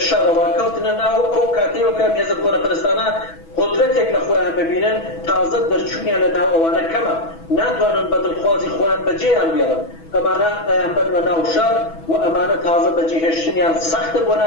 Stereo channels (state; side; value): late; right; 6.1 ms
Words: شەڕەوە کەوتنە ناو ئەو کاتەیەوە کە مێزە کۆنەپەرستانە قدرەتێک لە خۆیان ببینن تازە دەرچوونیان لە ناو ئەوانە کەمە ناتوانن بە دڵخوازی خۆیان بەجێیان بێڵن ئەمانە ئەیان بەرمە ناو شار و ئەمانە تازە بەجێهێشتنیان سەختە بۆ